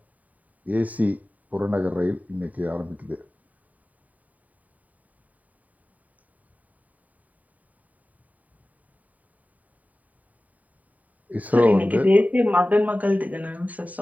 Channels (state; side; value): late; left; 0.073 ms